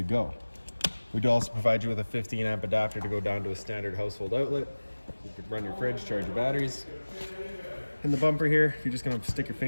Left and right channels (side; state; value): both; inverted; correlation -1.00